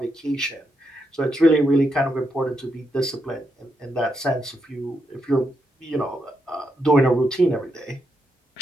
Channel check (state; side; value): normal; both; correlation 0.81